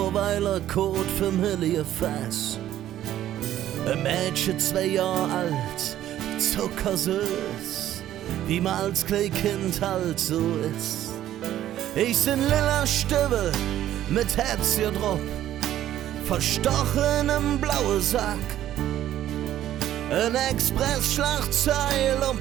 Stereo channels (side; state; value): left; quieter; 12.4 dB